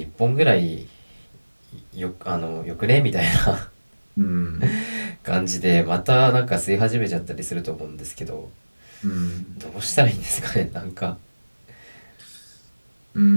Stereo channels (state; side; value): inverted; both; correlation -1.00